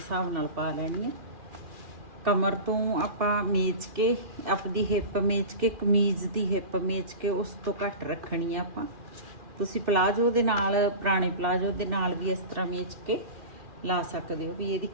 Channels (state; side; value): late; left; 2.4 ms